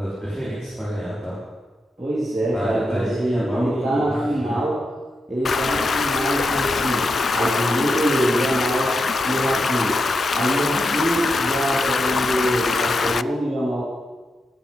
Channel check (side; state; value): both; normal; correlation 0.86